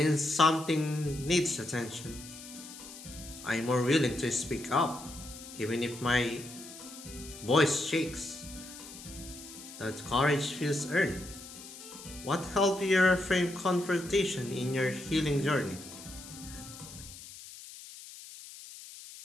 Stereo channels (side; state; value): left; noise; hiss, 15 dB below the sound